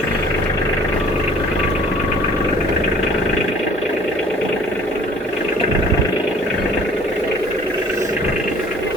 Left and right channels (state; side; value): normal; both; correlation 0.53